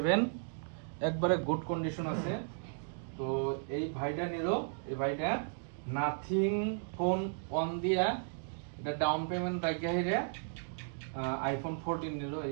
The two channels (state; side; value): silent; left; digital silence